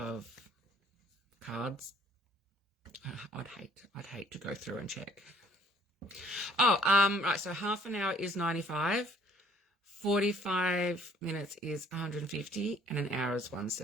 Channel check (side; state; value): both; normal; correlation 0.59